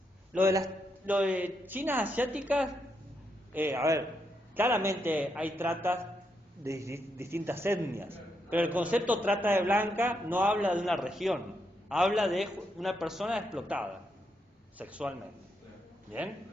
Lo de chinas asiáticas, claramente hay tratas de distintas etnias, pero el concepto trata de blanca no habla de una región, habla de una persona explotada sexualmente. ¿Bien?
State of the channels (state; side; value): normal; both; correlation 0.80